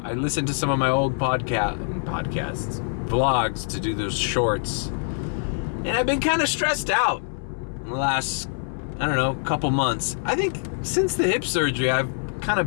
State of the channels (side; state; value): right; silent; 58 dB below the other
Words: listened to some of my old vlogs to do those shorts, and I've been kind of stressed out in the last, I don't know, couple months. I think since the hip surgery, I've kind